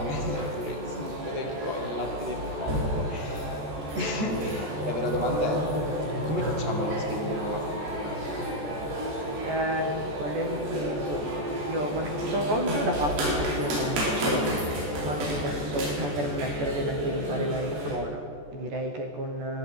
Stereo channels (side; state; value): left; late; 14 ms